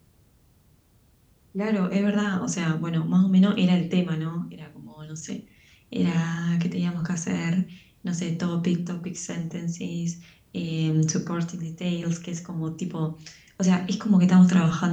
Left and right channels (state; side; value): identical; both; correlation 1.00